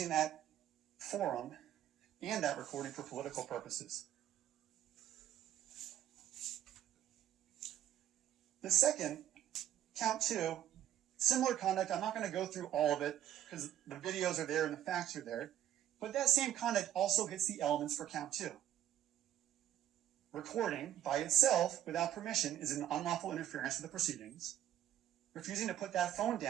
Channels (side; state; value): left; quieter; 11.6 dB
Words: that forum and that recording for political purposes. The second, count two, similar conduct. I'm not going to go through all of it because the videos are there and the facts are there. But that same conduct also hits the elements for count two. Recording by itself without permission is an unlawful interference with the proceedings. Refusing to put that phone